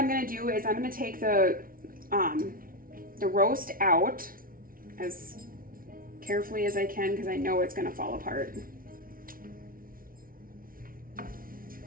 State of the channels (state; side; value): late; left; 0.42 ms